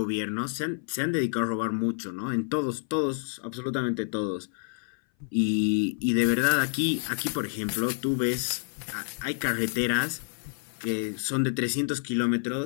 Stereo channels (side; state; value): right; silent; 57 dB below the other